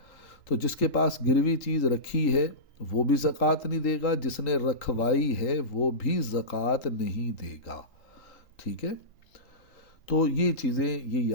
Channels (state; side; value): late; right; 3.8 ms